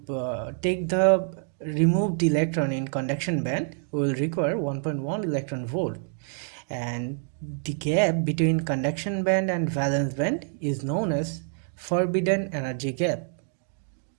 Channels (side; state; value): left; silent; 60 dB below the other